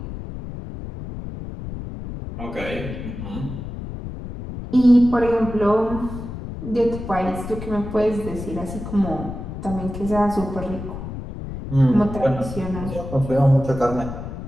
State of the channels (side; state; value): left; noise; rumble, 9 dB below the sound